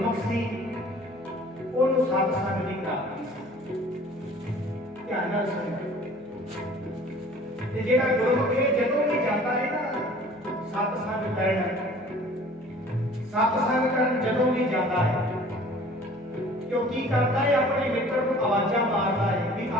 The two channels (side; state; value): right; noise; hum, 30 dB below the sound